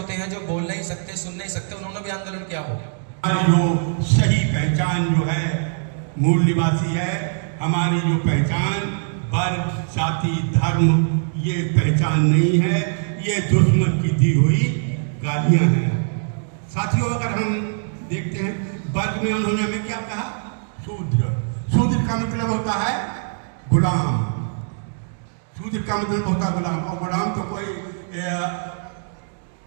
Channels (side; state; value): left; silent; digital silence